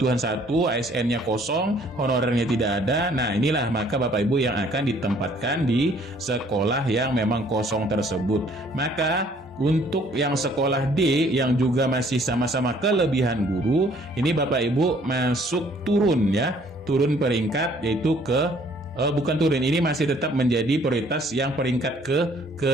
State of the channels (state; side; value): normal; both; correlation 0.60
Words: 1, ASN-nya kosong, honorernya tidak ada. Nah, inilah maka Bapak Ibu yang akan ditempatkan di sekolah yang memang kosong tersebut. Maka untuk yang sekolah D yang juga masih sama-sama kelebihan guru, ini Bapak Ibu masuk turun, ya, turun peringkat, yaitu ke bukan turun, ini masih tetap menjadi prioritas yang peringkat